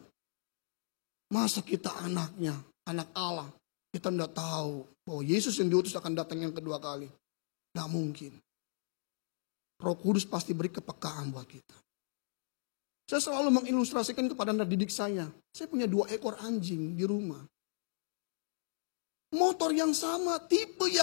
Masa kita anaknya, anak Allah. Kita enggak tahu bahwa Yesus yang diutus akan datang yang kedua kali. Nggak mungkin. Roh Kudus pasti beri kepekaan buat kita. Saya selalu mengilustrasikan kepada anak didik saya. Saya punya 2 ekor anjing di rumah. Motor yang sama, tipe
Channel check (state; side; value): silent; right; digital silence